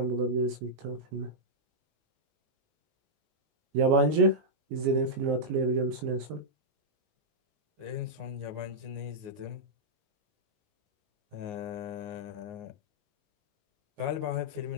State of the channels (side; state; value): left; late; 19 ms